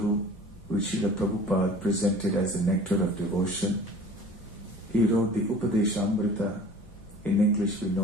which Srila Prabhupada presented as the nectar of devotion. He wrote the Upadeshamrita, in English we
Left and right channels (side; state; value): both; normal; correlation 0.44